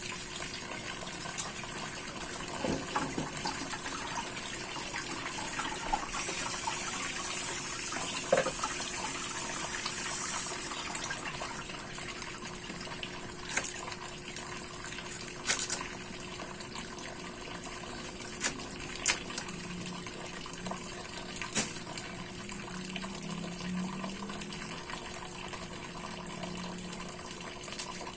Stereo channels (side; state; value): both; identical; correlation 1.00